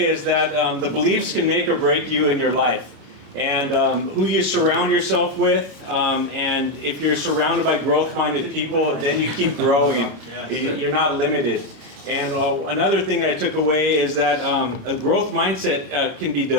is that the beliefs can make or break you in your life, and who you surround yourself with, and if you're surrounded by growth-minded people, then you keep growing. You're not limited. And another thing I took away is that a growth mindset can be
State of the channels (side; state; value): left; late; 28 ms